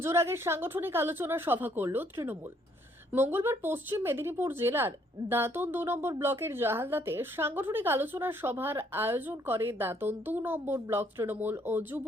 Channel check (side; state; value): both; normal; correlation 0.67